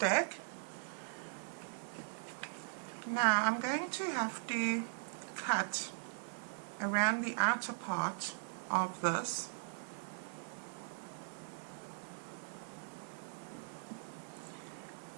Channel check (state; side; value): silent; left; digital silence